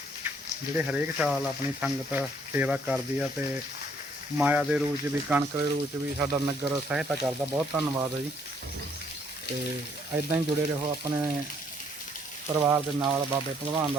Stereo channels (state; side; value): normal; both; correlation 0.66